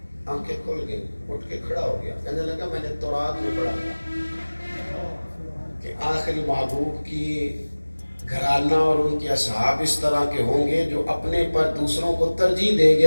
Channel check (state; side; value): inverted; both; correlation -1.00